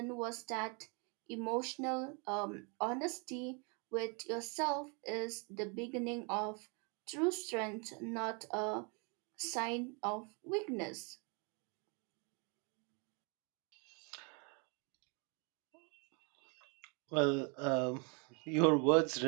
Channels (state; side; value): quieter; left; 34.5 dB